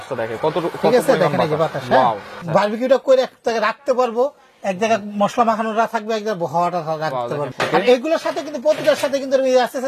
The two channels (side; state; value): both; identical; correlation 1.00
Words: দেখে কত, ঠিক আছে, দেখেন এই যে বাতাস, বারবিকিউটা করে এক জায়গায় রাখতে পারবো, এক জায়গায় মশলা মাখানোটা থাকবে, এক জায়গায় হাওয়াটা রাখতে পারবো। আর এগুলোর সাথে কিন্তু প্রতিটার সাথে কিন্তু আস্তে